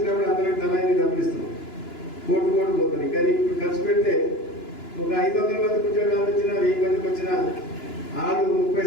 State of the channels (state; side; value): late; right; 2.9 ms